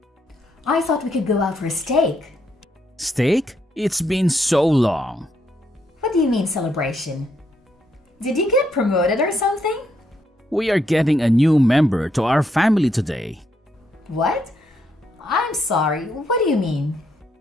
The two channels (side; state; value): both; normal; correlation 0.76